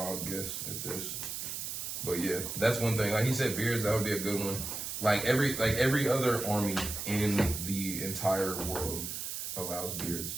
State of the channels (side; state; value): right; noise; hiss, 5 dB below the sound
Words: guess at this, but yeah, that's one thing. Like he said, beards. That would be a good one. Like every other army in the entire world allows beards,